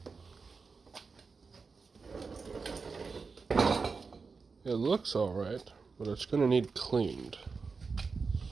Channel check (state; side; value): quieter; left; 4.7 dB